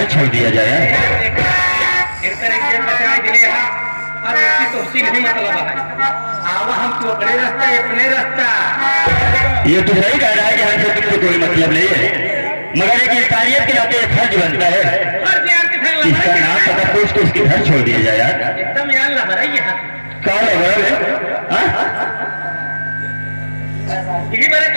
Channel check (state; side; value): inverted; both; correlation -1.00